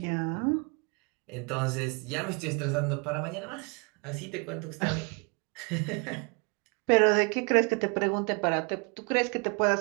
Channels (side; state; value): left; quieter; 33.4 dB